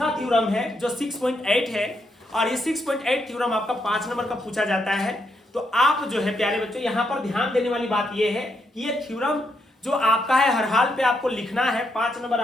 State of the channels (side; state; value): both; normal; correlation 0.78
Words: थ्योरम है जो 6.8 है, और ये 6.8 थ्योरम आपका 5 नंबर का पूछा जाता है। तो आप जो है प्यारे बच्चों यहाँ पर ध्यान देने वाली बात ये है कि ये थ्योरम जो आपका है हर हाल पे आपको लिखना है, 5 नंबर